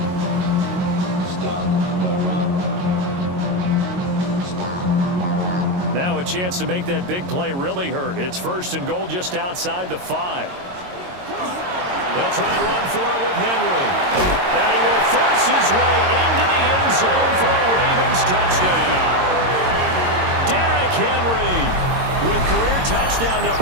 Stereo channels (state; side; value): late; left; 22 ms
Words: Now a chance to make that big play really hurt. It's 1st and goal just outside the 5. They'll try and run for it with Henry. And he will force his way into the end zone for a Ravens touchdown. Derrick Henry with career touchdown